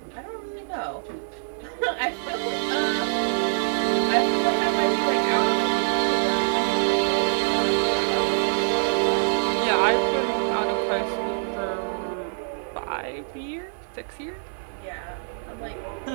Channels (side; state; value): left; silent; digital silence